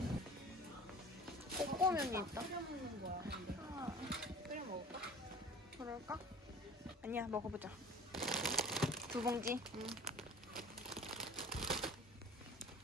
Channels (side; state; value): both; normal; correlation 0.42